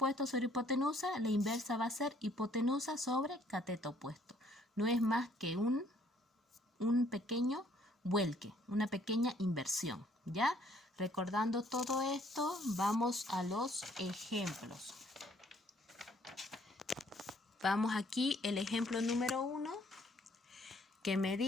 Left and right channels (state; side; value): normal; both; correlation 0.63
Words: sobre hipotenusa, la inversa va a ser hipotenusa sobre cateto opuesto. No es más que un pequeño vuelque, una pequeña inversión, ¿ya? Recordando todo esto, vamos a los ejemplos. Vamos aquí, el ejemplo número 1, que me